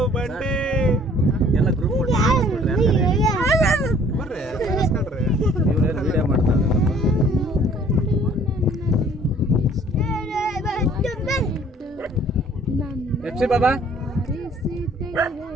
ಬಂಡೆ ಎಲ್ಲ ಗ್ರೂಪ್ ಬರ್ರಿ ಕಳಿಸ್ಕೊಳ್ರಿ. ವಿಡಿಯೋ ಮಾಡ್ತಾರೆ. ಎಫ್ಸಿ ಬಾಬಾ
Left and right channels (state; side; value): normal; both; correlation 0.56